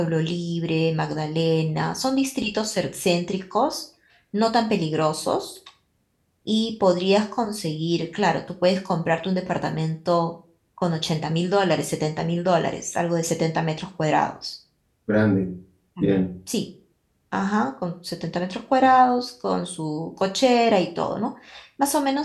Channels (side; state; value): both; identical; correlation 1.00